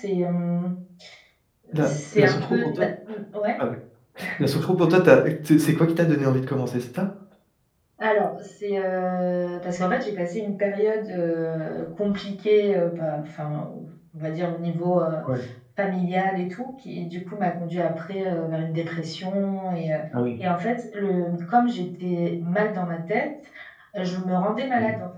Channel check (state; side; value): identical; both; correlation 1.00